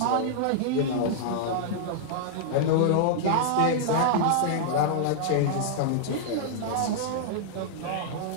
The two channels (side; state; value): both; different; correlation -0.01